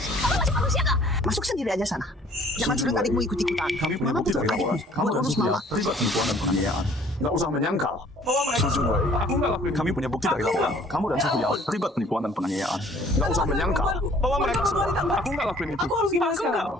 Kamu masih manusia nggak? Masuk sendiri aja sana. Jangan surat adikmu ikut-ikutan. Kami punya Mama bukti bukan dari laporan. adikmu. Kamu Buat dan ngurus Supriya mama. terlibat penipuan dan penganiayaan. Nggak usah menyangkal. Sujunwei, aku nggak lakuin. Kami punya bukti dari laporan. Kamu dan Suhu Yao terlibat penipuan dan penganiayaan. Nggak usah menyangkal bahwa mereka semua. Aku nggak lakuin itu. Aku harus gimana sekarang?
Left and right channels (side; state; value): both; normal; correlation 0.56